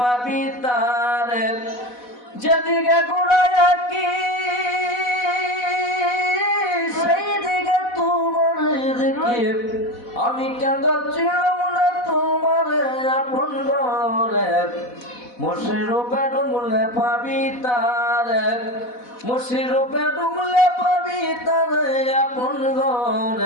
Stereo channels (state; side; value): late; right; 4.1 ms